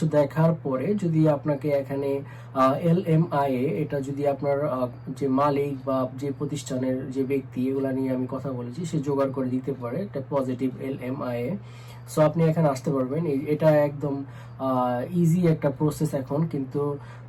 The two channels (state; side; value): identical; both; correlation 1.00